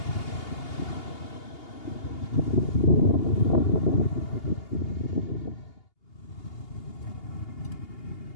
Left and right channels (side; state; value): right; late; 2.8 ms